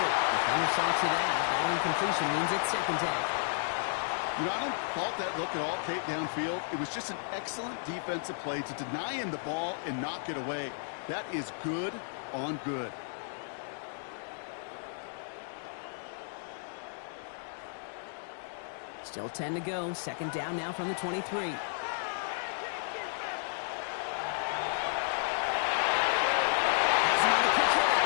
Defender saw to that. That incompletion means it's 2nd down. You know, I don't fault that look at all, Kate, downfield. It was just an excellent defensive play to deny him the ball and knock it away. That is good on good. Still 10 to go. 2nd down now from the 23. Has him on the quick hit.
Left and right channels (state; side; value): silent; right; digital silence